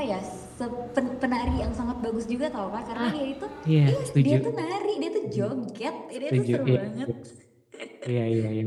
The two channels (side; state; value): both; identical; correlation 1.00